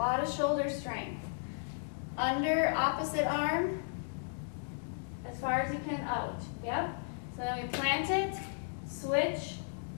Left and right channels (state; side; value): silent; right; digital silence